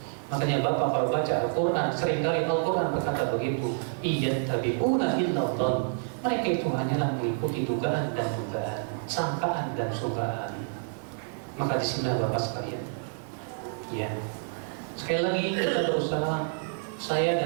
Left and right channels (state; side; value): silent; left; digital silence